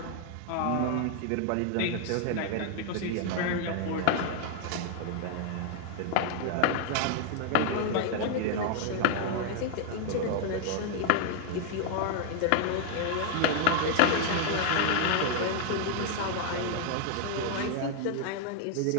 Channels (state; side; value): different; both; correlation 0.00